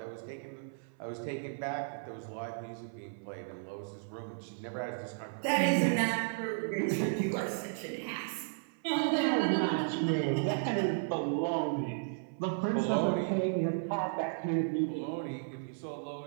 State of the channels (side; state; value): left; silent; 55 dB below the other